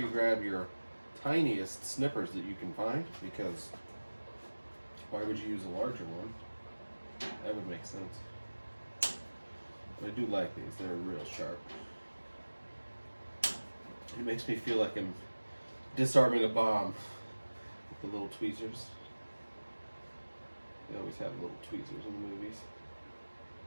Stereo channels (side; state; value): both; inverted; correlation -1.00